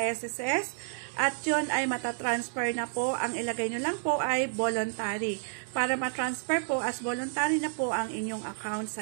at yun ay matatransfer na po. Ang ilagay nyo lang po ay voluntary. Para matransfer po as voluntary na po ang inyong account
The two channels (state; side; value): silent; left; digital silence